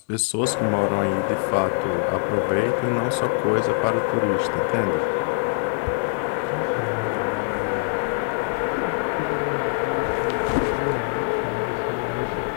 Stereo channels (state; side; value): silent; right; 62 dB below the other